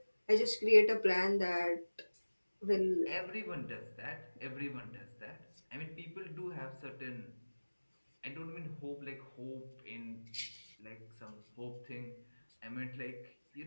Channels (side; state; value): both; inverted; correlation -1.00